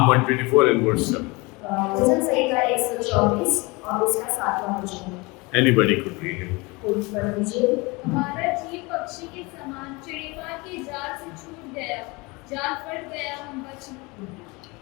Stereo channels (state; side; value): quieter; right; 25.7 dB